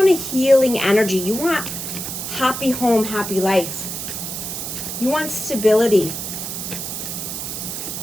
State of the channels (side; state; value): right; noise; hiss, 5 dB below the sound